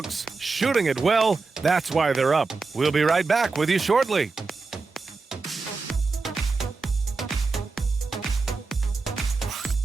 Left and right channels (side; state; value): left; quieter; 4.1 dB